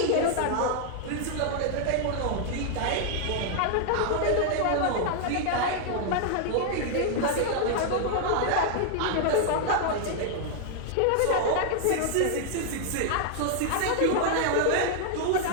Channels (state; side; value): different; both; correlation 0.00